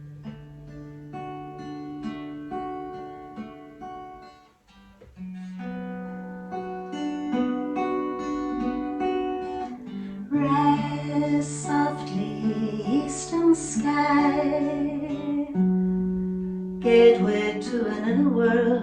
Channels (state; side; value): identical; both; correlation 1.00